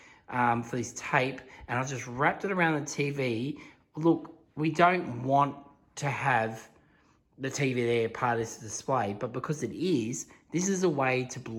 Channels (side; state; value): both; identical; correlation 1.00